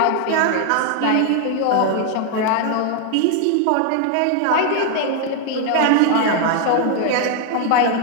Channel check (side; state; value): both; different; correlation 0.00